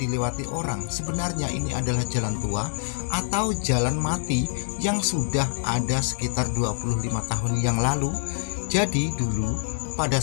orang. Sebenarnya ini adalah jalan tua atau jalan mati yang sudah ada sekitar 25 tahun yang lalu. Jadi dulu pada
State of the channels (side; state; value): right; silent; digital silence